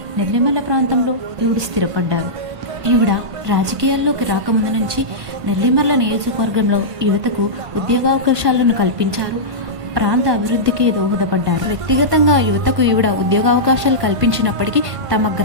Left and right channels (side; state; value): left; late; 1.5 ms